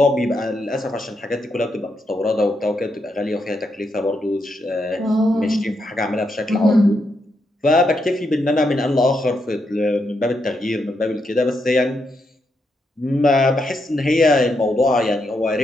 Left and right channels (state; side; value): normal; both; correlation 0.81